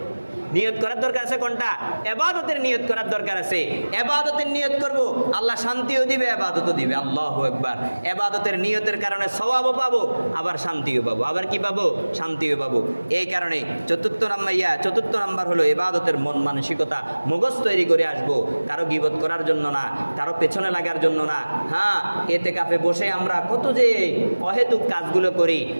নিয়ত করার দরকার আছে কোনটা? ইবাদতের নিয়ত করার দরকার আছে। ইবাদতের নিয়ত করব, আল্লাহ শান্তিও দিবে, ইবাদতও দিবে। আল্লাহু আকবার। ইবাদতের নিয়তের কারণে সওয়াবও পাবো, আবার শান্তিও পাবো। আবার কি পাবো? শান্তিও পাবো। এই কারণে চতুর্থ নাম্বার হলো ইবাদতের মন মানসিকতা, মগজ তৈরি করে আসবো। কারো গীবত করার জন্য না, কারো পেছনে লাগার জন্য না। হ্যাঁ, ইতিকাফে বসে আমরা কত যে অহেতুক কাজগুলো করি,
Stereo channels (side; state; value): both; inverted; correlation -1.00